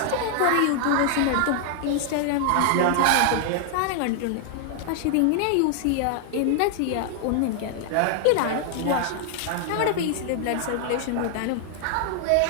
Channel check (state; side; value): different; both; correlation 0.00